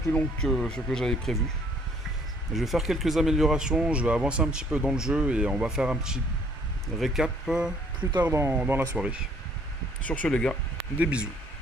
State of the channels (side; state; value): both; normal; correlation 0.62